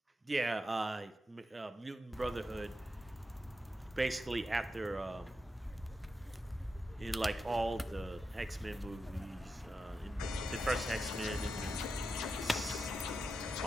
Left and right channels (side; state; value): both; normal; correlation 0.88